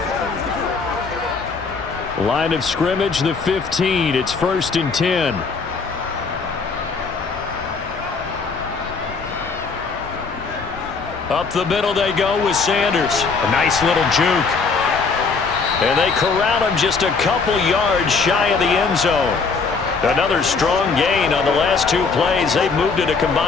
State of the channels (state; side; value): quieter; right; 4.8 dB